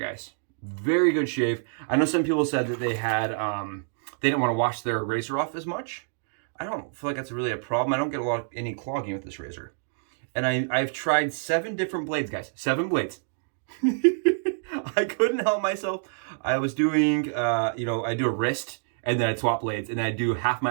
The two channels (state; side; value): silent; left; digital silence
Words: Very good shave. I know some people said that they didn't want to wash their razor off as much. I don't feel like that's really a problem. I don't get any clogging with this razor. And I've tried 7 different blades, guys. 7 blades. I couldn't help myself. I was doing, I do a wrist, and then I'd swap blades, and I'd do half my